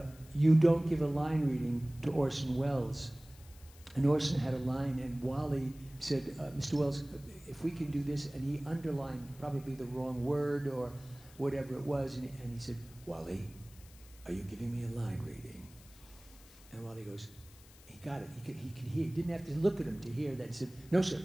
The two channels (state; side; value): noise; left; hiss, 23 dB below the sound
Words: you don't give a line reading to Orson Welles. And Orson had a line, and Wally said, Mr. Welles, if we can do this, and he underlined probably the wrong word or whatever it was, and he said, Wally, are you giving me a line reading? And Wally goes, he got it. He could hear. He didn't have to look at him to hear that. He said, no, sir,